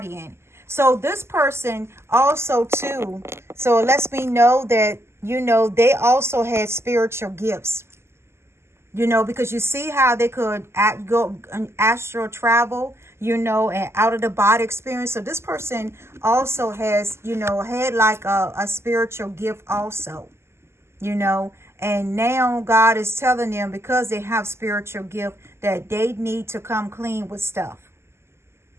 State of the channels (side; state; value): left; late; 0.12 ms